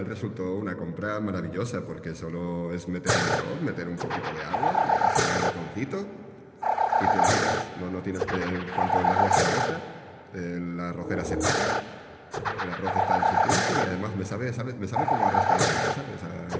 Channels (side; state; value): both; identical; correlation 1.00